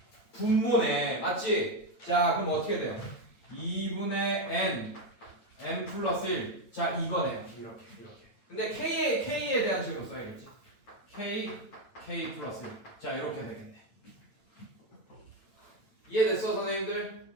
분모네 맞지? 자 그럼 어떻게 돼요? 2분의 N 플러스 1 자 이거네요. 이렇게 근데 K에 대한 식으로 써야겠지. K 플러스 1 자 이렇게 되겠네. 이해됐어 선생님들?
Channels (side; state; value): right; late; 9.0 ms